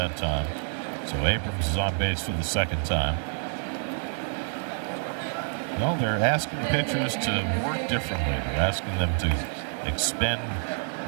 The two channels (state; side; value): silent; left; 60 dB below the other